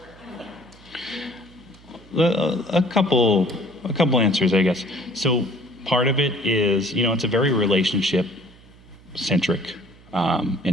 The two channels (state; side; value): noise; right; hum, 24 dB below the sound